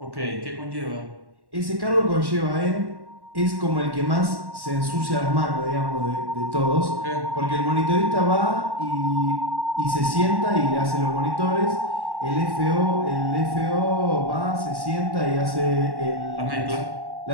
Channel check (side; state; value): left; late; 1.1 ms